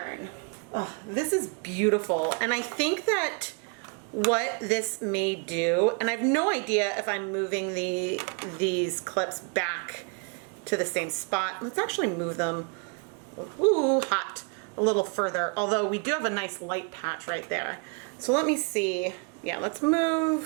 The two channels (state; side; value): quieter; left; 35.9 dB